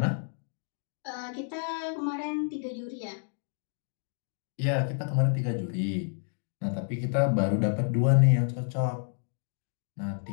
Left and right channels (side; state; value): right; silent; digital silence